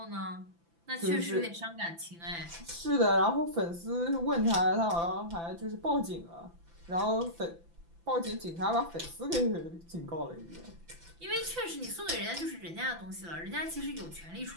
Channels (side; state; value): left; late; 5.9 ms